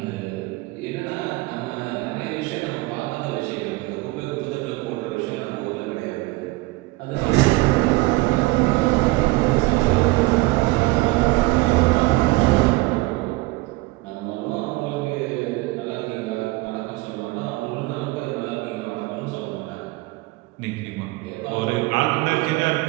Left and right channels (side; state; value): left; quieter; 21.3 dB